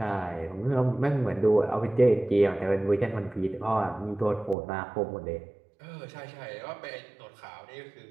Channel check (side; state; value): left; drops out; at 4.5 s